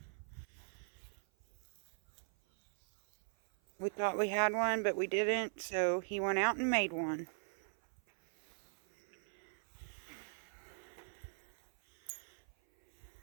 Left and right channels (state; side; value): silent; left; 51 dB below the other